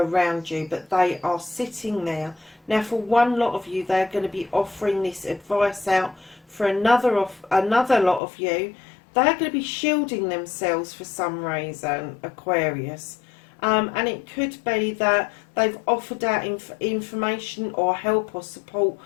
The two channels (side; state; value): right; drops out; at 8.2 s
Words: you, but they are sitting there. Now for one lot of you, they're going to be offering this advice out. For another lot of you, they're going to be shielding themselves for some reason, Aquarius. And it could be that they've offered out information or help or support